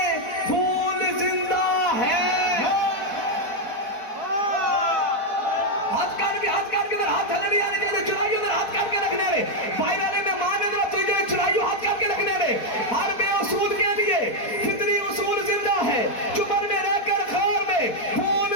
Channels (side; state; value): right; late; 4.6 ms